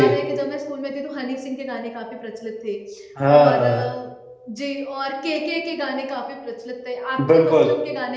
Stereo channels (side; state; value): both; identical; correlation 1.00